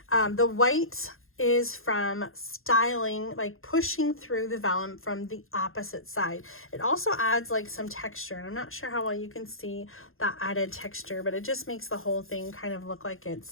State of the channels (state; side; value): late; right; 0.60 ms